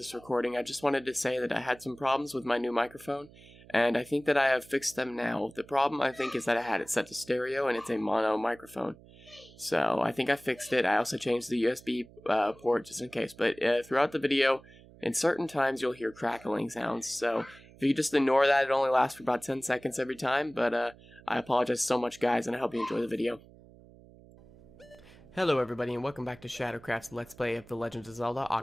recording, I just wanted to say that I had some problems with my new microphone, and I think that I have fixed them now. The problem, I think, is that I had it set to stereo, and it's a mono microphone. So, I think I fixed it. I also changed the USB port just in case, but throughout the video, in certain times, you'll hear crackling sounds, so if you just ignore that, it only lasts for about 10 seconds every time, but I apologize so much, guys, and I hope you enjoy the video. Hello everybody and welcome back to Shadowcraft's Let's Play of The Legend of Zelda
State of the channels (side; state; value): right; noise; hum, 23 dB below the sound